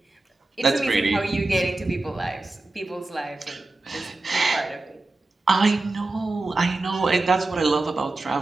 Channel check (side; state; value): left; quieter; 3.1 dB